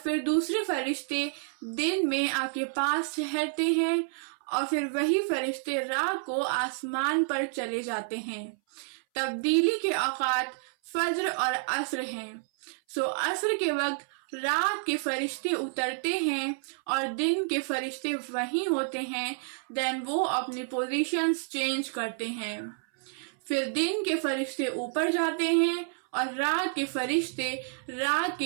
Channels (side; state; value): left; silent; 58 dB below the other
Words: پھر دوسرے فرشتے دن میں آپ کے پاس ٹھہرتے ہیں، اور پھر وہی فرشتے رات کو آسمان پر چلے جاتے ہیں۔ تبدیلی کے اوقات فجر اور عصر ہیں۔ عصر کے وقت رات کے فرشتے اترتے ہیں اور دن کے فرشتے وہیں ہوتے ہیں، وہ اپنی پوزیشنز چینج کرتے ہیں۔ پھر دن کے فرشتے اوپر جاتے ہیں اور رات کے فرشتے رات